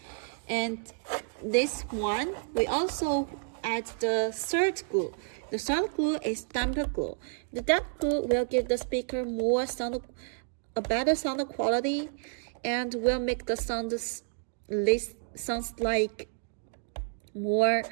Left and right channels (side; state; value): left; silent; 57 dB below the other